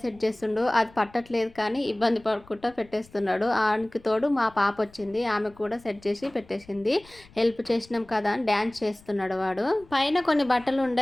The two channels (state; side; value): noise; left; rumble, 25 dB below the sound